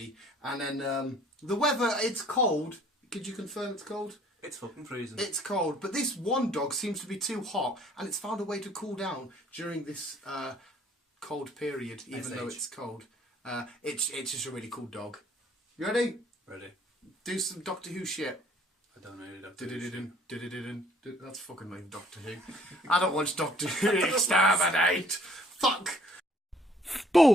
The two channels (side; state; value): both; normal; correlation 0.59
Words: And then the weather, it's cold. Could you confirm it's cold? It's fucking freezing. It's cold, but this one dog seems to be too hot, and it's found a way to cool down during this cold period, even though it's cold. It's just a really cool dog. You ready? Ready. Do some Doctor Who shit. I don't know Doctor Who. That's fucking like Doctor Who. I don't watch Doctor Who. Exterminate. Fuck.